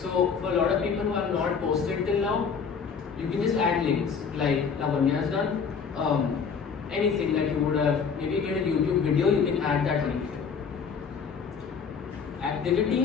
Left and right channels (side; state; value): right; quieter; 6.1 dB